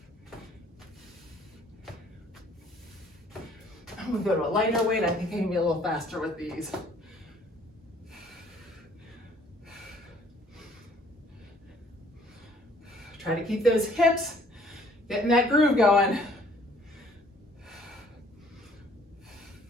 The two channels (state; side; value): normal; both; correlation 0.59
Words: I'm gonna go to a lighter weight. I think I can be a little faster with these. Try to keep those hips, getting that groove going.